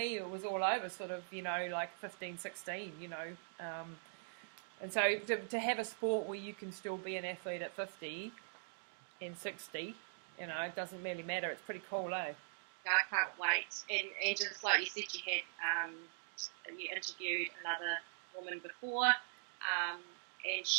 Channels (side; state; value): left; silent; digital silence